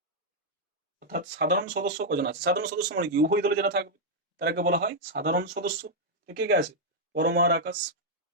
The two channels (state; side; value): normal; both; correlation -0.04